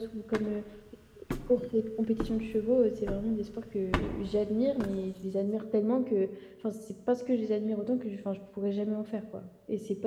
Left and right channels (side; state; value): both; identical; correlation 1.00